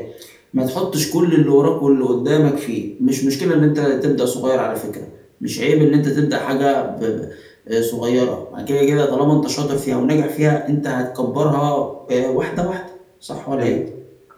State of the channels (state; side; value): identical; both; correlation 1.00